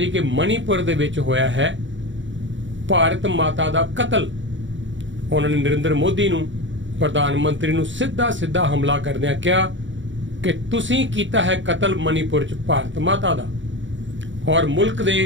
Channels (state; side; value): late; left; 0.55 ms